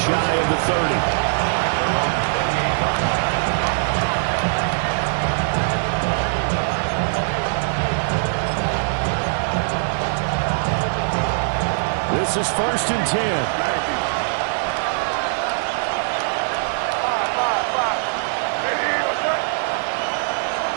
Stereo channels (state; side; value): silent; left; 65 dB below the other